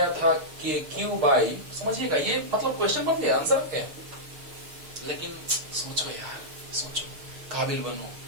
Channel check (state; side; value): late; left; 6.5 ms